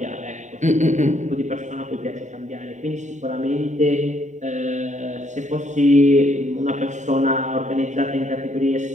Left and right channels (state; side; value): late; left; 0.35 ms